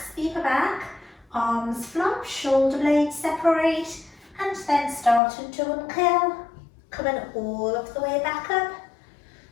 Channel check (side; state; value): right; drops out; at 5.2 s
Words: the upper back, arms flop, shoulder blades separate, and then starting to uncurl, coming all of the way back up